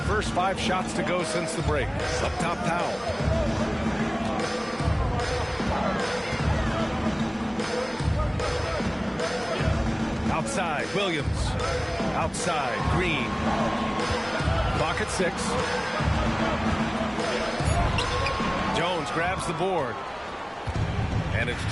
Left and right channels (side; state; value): both; identical; correlation 1.00